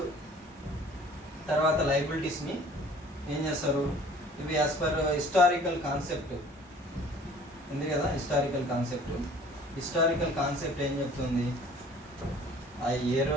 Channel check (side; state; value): both; normal; correlation 0.51